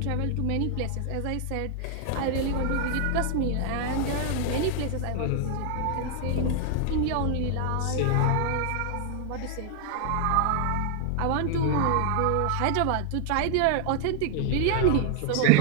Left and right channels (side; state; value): both; different; correlation 0.00